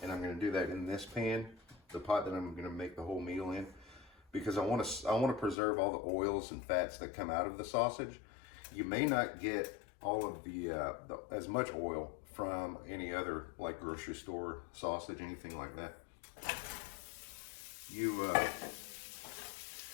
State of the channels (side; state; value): right; drops out; at 5.6 s